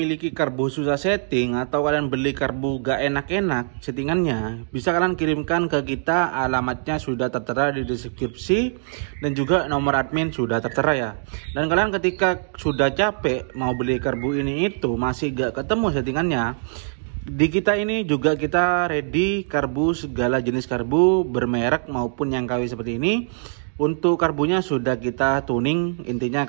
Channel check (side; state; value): left; silent; digital silence